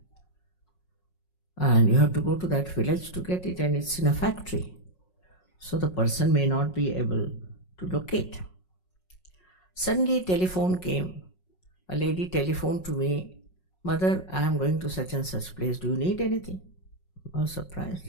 And you have to go to that village to get it, and it's in a factory. So the person may not be able to locate. Suddenly telephone came. A lady telephoned to me, Mother, I am going to such and such place. Do you need anything? I was surprised,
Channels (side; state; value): right; late; 5.5 ms